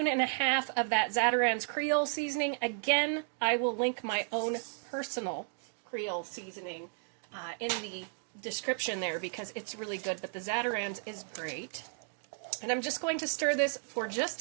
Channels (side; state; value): left; silent; 55 dB below the other